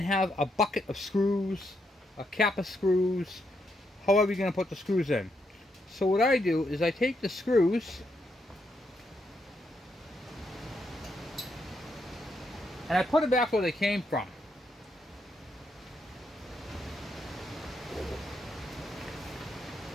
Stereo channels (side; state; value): both; normal; correlation 0.79